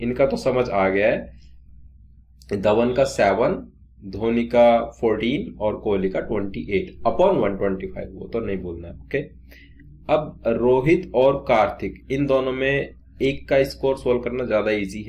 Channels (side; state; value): both; identical; correlation 1.00